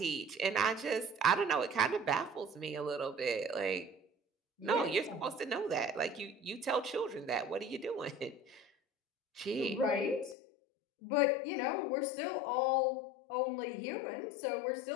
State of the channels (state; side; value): drops out; right; at 10.4 s